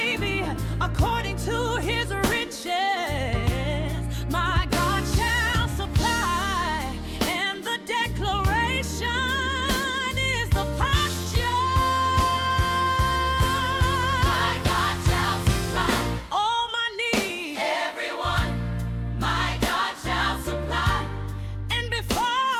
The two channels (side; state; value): both; identical; correlation 1.00